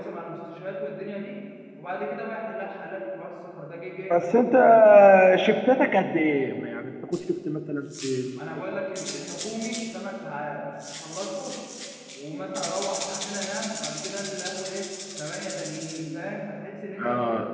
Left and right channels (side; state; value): both; identical; correlation 1.00